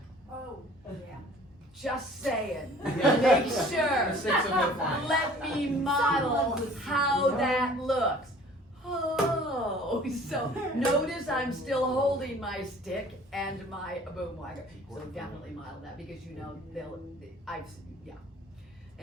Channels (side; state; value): both; normal; correlation 0.50